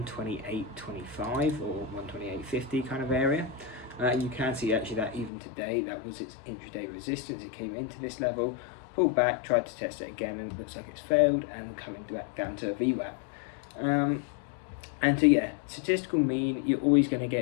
or 128.50 kind of area. You can see actually that even today that was its intraday resistance. It came into this level, pulled back, tried to test it again, and it looks like it's failed and coming back down to a VWAP. And so yeah, statistical mean, you're always going to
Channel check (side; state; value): right; drops out; at 5.3 s